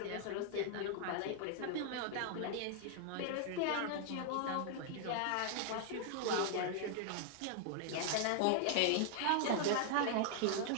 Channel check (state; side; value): different; both; correlation 0.00